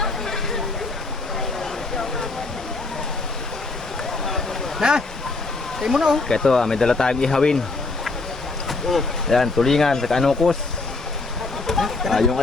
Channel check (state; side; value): quieter; right; 3.5 dB